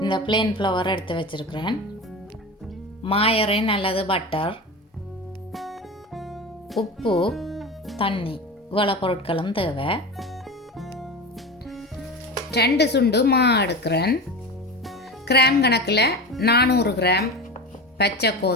இந்த பிளேன் ஃப்ளவர் எடுத்து வச்சிருக்கிறேன். மாயரின் அல்லது பட்டர், உப்பு, தண்ணி, இவ்வளோ பொருட்களும் தேவை. 2 சுண்டு மா எடுக்கிறேன். கிராம் கணக்கில் 400 கிராம் பச்சை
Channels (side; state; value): both; normal; correlation 0.28